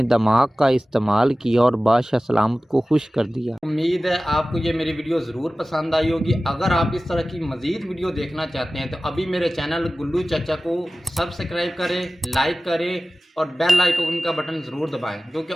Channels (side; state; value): both; normal; correlation 0.97